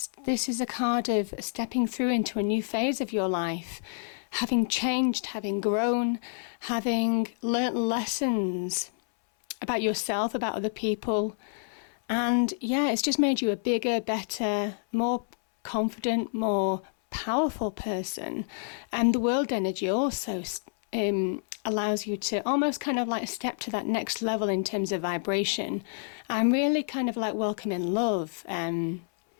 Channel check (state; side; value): silent; right; 59 dB below the other